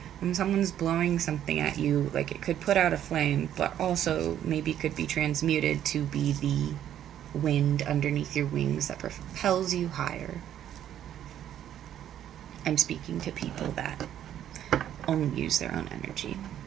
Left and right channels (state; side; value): quieter; left; 10.8 dB